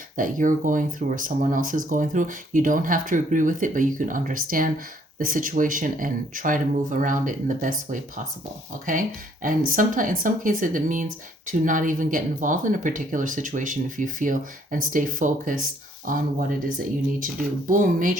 that you're going through or someone else is going through. You don't have to agree with it, but you can understand the situation and try to move around it in the best way possible. Okay. And sometimes, in some cases, it means to not even get involved in a particular situation if you feel, and stay focused on what it is that you need to do. Boom,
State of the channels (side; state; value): both; normal; correlation 0.64